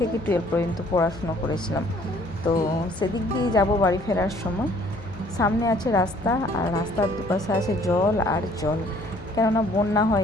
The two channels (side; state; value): left; noise; hum, 17 dB below the sound